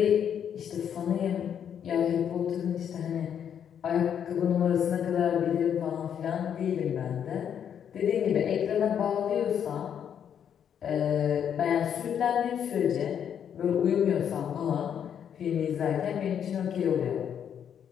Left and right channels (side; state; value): right; quieter; 8.6 dB